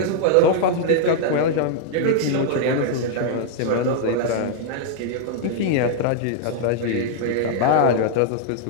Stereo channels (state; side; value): different; both; correlation -0.01